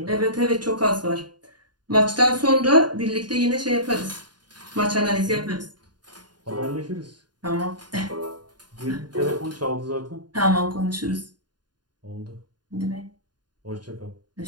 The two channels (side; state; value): left; late; 0.70 ms